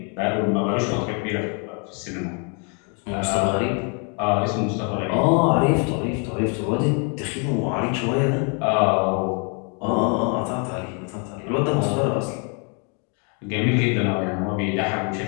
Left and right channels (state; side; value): quieter; right; 37.4 dB